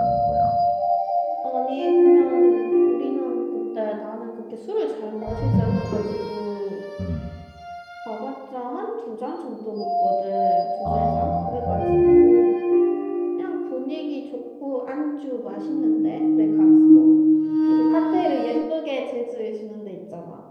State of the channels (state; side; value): identical; both; correlation 1.00